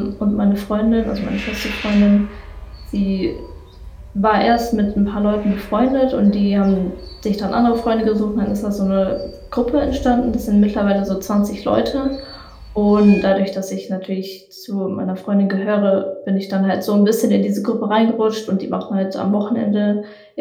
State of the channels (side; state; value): both; identical; correlation 1.00